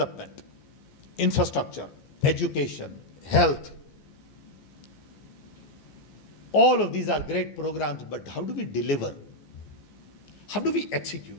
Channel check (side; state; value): right; late; 14 ms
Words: infrastructure, education, health. All of these are great programs, but how do we deliver? How do we